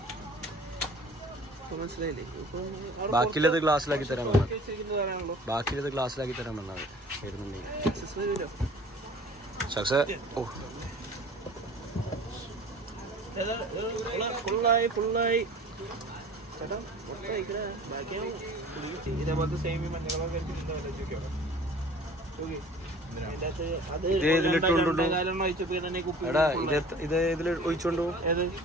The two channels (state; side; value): normal; both; correlation 0.46